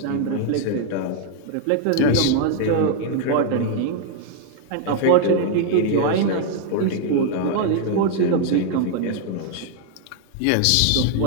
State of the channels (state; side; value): different; both; correlation 0.00